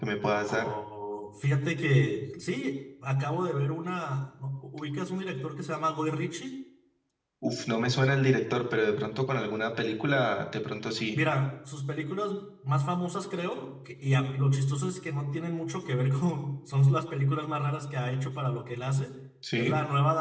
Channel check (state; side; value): identical; both; correlation 1.00